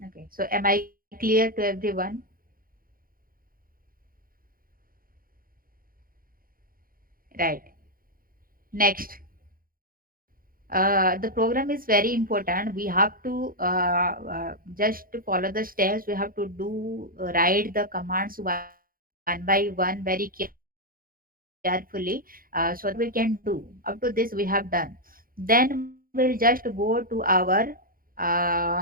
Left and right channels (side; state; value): left; late; 0.42 ms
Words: Okay. So am I clear to everyone? Right. Next. The program is very important. We have to just to follow the steps. We have to do write the commands one by one very carefully, so that we can do. Up to this we have done. Then we'll just go to our